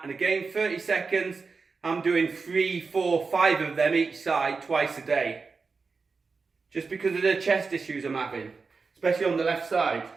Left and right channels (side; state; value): left; quieter; 4.6 dB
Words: and again 30 seconds, I'm doing 3, 4, 5 of them each side twice a day. Just because of the chest issues I'm having, especially on the left side.